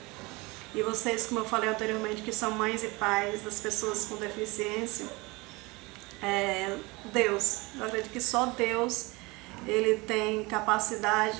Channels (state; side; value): quieter; left; 24.3 dB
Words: E vocês, como eu falei anteriormente, que são mães e pais das pessoas com deficiência, Deus, eu acredito que só Deus, ele tem